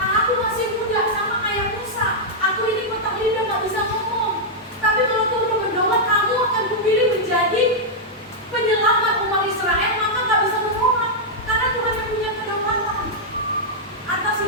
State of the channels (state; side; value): normal; both; correlation -0.06